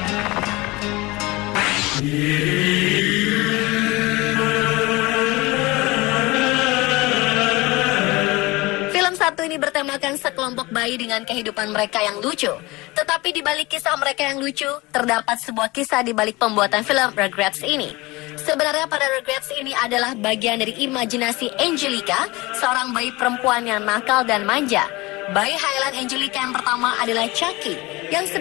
Satu ini bertemakan sekelompok bayi dengan kehidupan mereka yang lucu. Tetapi di balik kisah mereka yang lucu, terdapat sebuah kisah di balik pembuatan film Rugrats ini. Sebenarnya pada Rugrats ini adalah bagian dari imajinasi Angelica, seorang bayi perempuan yang nakal dan manja. Bayi Highland Angelica yang pertama adalah Chucky, yang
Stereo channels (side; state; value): right; quieter; 22.3 dB